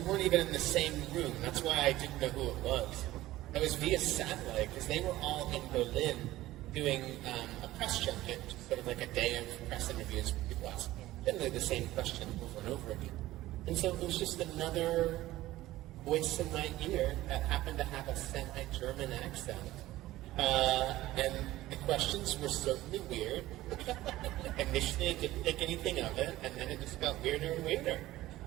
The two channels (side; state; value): left; quieter; 16.2 dB